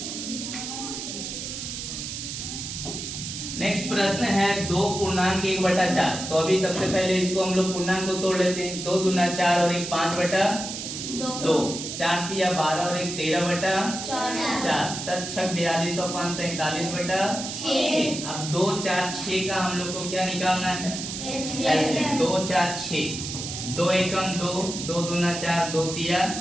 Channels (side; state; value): right; noise; hiss, 6 dB below the sound